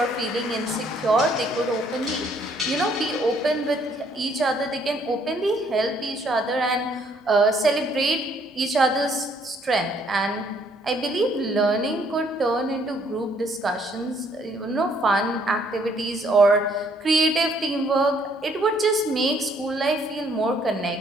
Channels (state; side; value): normal; both; correlation 0.65